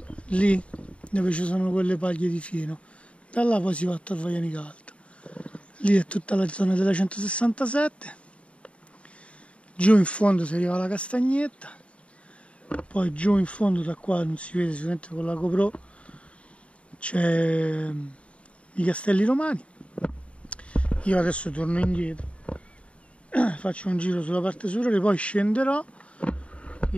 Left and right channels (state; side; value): late; right; 0.062 ms